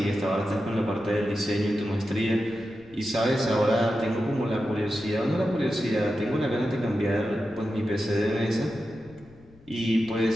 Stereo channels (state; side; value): noise; left; rumble, 25 dB below the sound